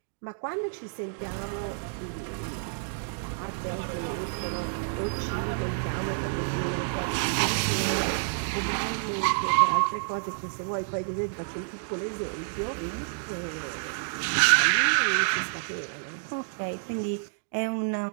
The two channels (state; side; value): silent; left; digital silence